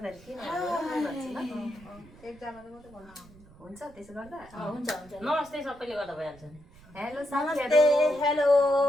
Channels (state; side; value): noise; right; rumble, 23 dB below the sound